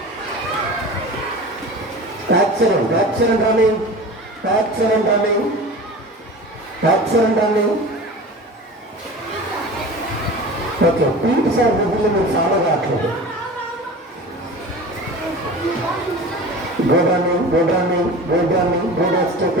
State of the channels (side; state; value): both; normal; correlation 0.35